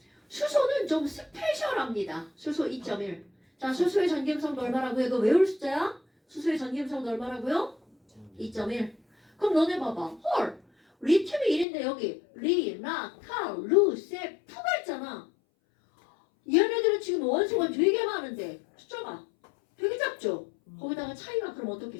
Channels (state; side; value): drops out; right; at 11.7 s